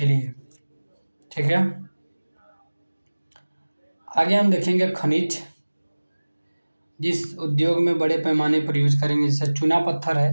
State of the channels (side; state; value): both; inverted; correlation -1.00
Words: लिए। ठीक है, आगे हम देखेंगे खनिज, जिस उद्योग में बड़े पैमाने पर यूज करेंगे, जैसे चूना पत्थर है,